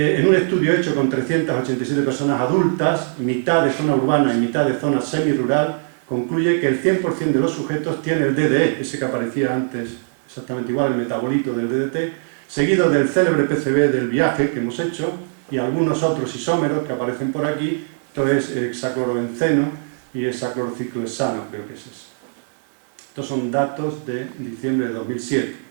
un estudio hecho con 387 personas adultas, mitad de zona urbana y mitad de zona semirural, concluye que el 100% de los sujetos tiene el DDE, ese que aparecía antes, exactamente igual, el metabolito del DDT, seguido del célebre PCB del viaje que hemos hecho y algunos otros isómeros que aparecen por aquí, esto es hexaclorobenceno y hexaclorociclohexano, creo que es eso. Estos son datos de diciembre de 2007.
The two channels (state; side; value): silent; left; 59 dB below the other